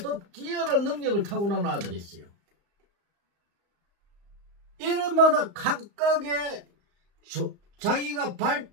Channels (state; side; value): late; left; 35 ms